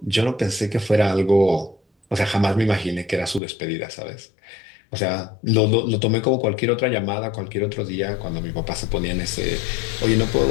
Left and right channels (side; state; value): right; drops out; at 3.4 s